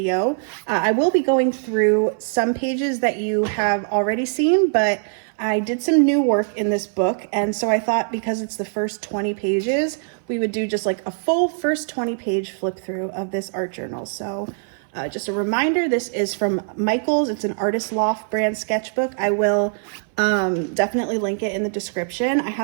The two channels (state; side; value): silent; left; 58 dB below the other